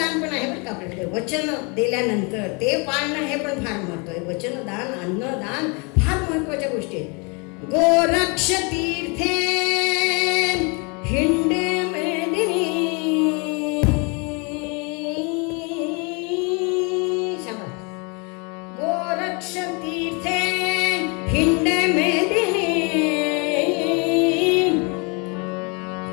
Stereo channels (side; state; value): right; quieter; 32.0 dB